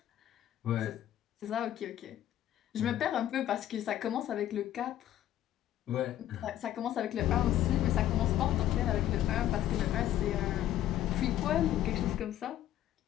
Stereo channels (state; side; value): quieter; right; 12.3 dB